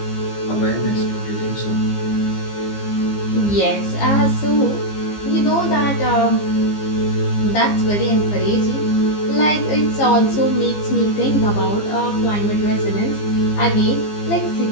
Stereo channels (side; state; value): right; late; 15 ms